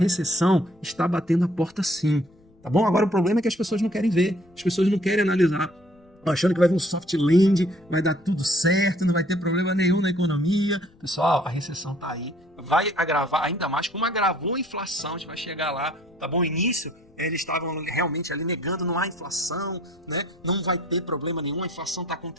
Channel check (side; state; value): left; noise; rumble, 29 dB below the sound